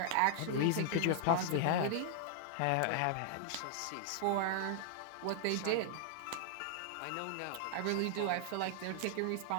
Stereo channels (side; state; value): both; different; correlation -0.01